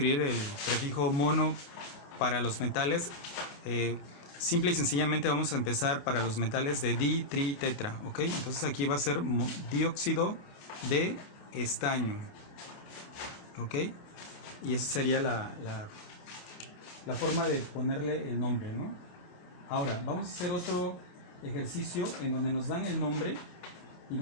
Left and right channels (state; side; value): late; right; 28 ms